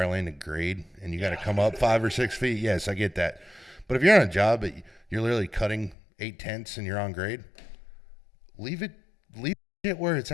lane to grade and you got to come up 5 or 6 feet, yes, I get that. But if you're on a job that you're literally cutting 8/10 and you're on grade, leave it where it's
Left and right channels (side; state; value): right; drops out; at 6.0 s